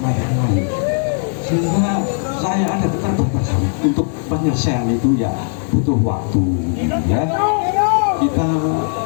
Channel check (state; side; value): silent; right; 63 dB below the other